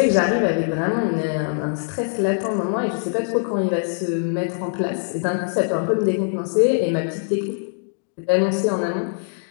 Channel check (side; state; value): right; silent; digital silence